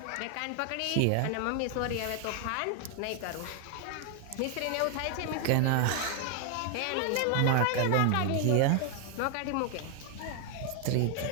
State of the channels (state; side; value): different; both; correlation 0.00